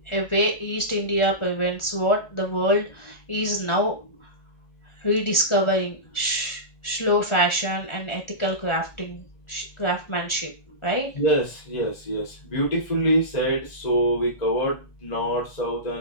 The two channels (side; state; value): right; late; 1.4 ms